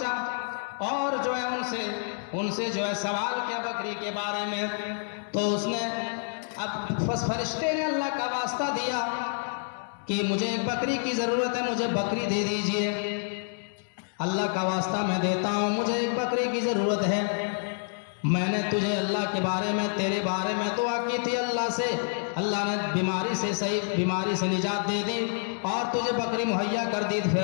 اور جو ہے ان سے جو ہے سوال کیا بکری کے بارے میں، تو اس نے اب فرشتے نے اللہ کا واسطہ دیا کہ مجھے ایک بکری کی ضرورت ہے، مجھے بکری دے دیجئے، اللہ کا واسطہ میں دیتا ہوں، مجھے ایک بکری کی ضرورت ہے، میں نے تجھے اللہ کے بارے میں تیرے بارے میں دعا کی تھی اللہ سے، اللہ نے بیماری سے صحیح بیماری سے نجات دے دی اور تجھے بکری مہیا کر دی، پھر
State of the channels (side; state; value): right; silent; digital silence